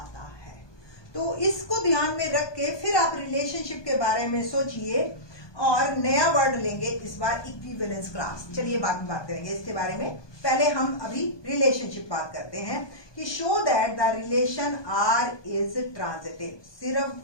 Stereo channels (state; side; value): late; right; 1.2 ms